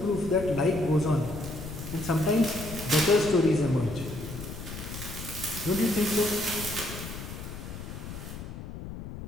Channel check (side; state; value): left; noise; rumble, 10 dB below the sound